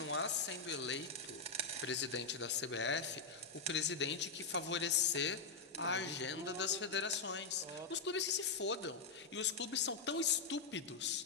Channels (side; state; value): right; quieter; 4.6 dB